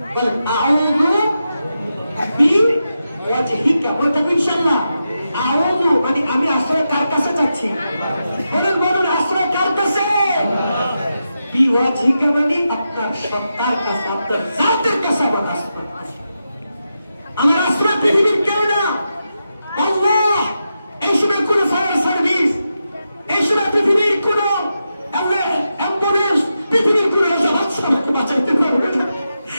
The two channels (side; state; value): both; inverted; correlation -0.88